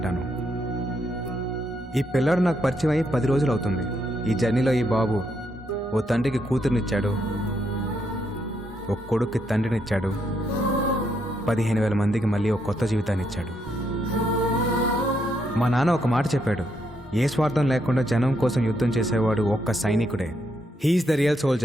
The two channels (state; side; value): normal; both; correlation 0.77